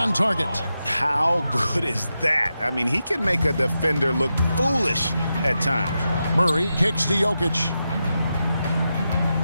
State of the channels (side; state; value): both; inverted; correlation -0.89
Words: target. How good is that? I mean, he can make a defender look foolish at times. Murray kicks to Jokic.